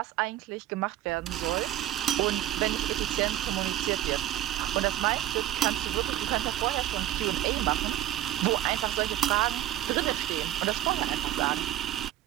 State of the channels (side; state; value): left; quieter; 13.2 dB